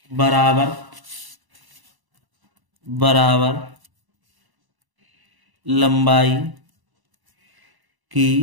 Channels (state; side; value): late; left; 1.0 ms